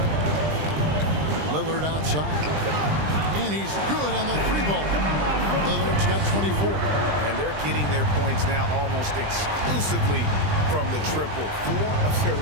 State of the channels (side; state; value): left; late; 20 ms